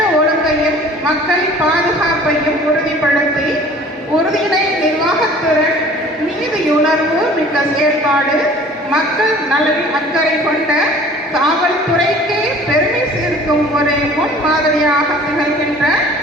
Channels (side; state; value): both; normal; correlation 0.48